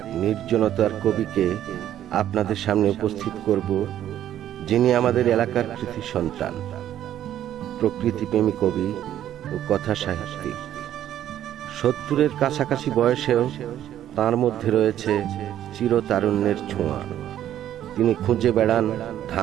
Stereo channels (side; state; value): left; quieter; 11.5 dB